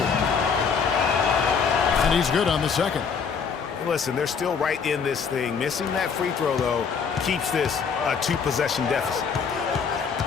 And he's good on the second. Listen, they're still right in this thing. Missing that free throw, though, keeps this a 2-possession deficit.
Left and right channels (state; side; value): quieter; right; 6.1 dB